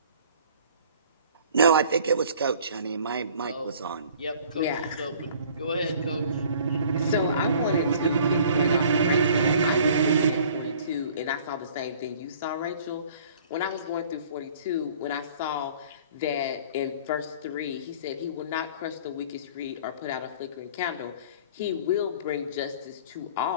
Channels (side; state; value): both; inverted; correlation -0.52